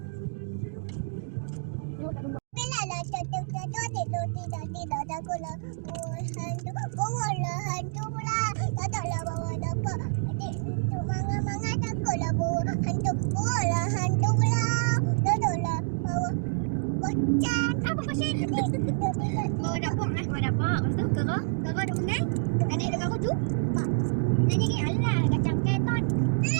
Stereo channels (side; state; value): left; silent; digital silence